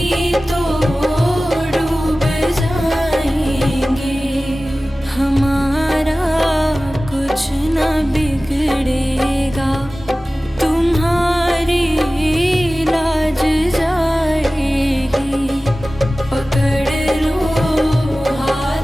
तो डूब जाएंगे। हमारा कुछ न बिगड़ेगा, तुम्हारी लाज जाएगी। पकड़ लो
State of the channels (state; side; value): normal; both; correlation 0.97